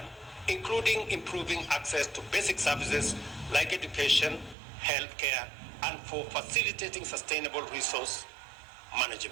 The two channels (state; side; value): drops out; left; at 4.5 s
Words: including improving access to basic services like education, healthcare, and for facilitating sustainable resource